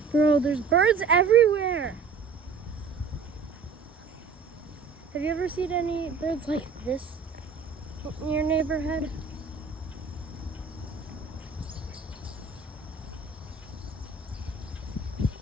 Bro, there's birds everywhere. Have you ever seen any birds like this in your neighborhood?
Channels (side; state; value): left; quieter; 5.0 dB